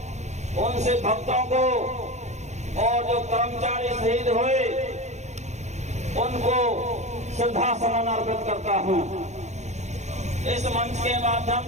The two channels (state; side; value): late; left; 0.33 ms